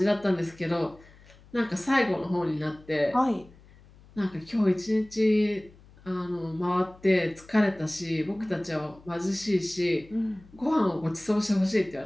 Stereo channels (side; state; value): left; noise; hum, 25 dB below the sound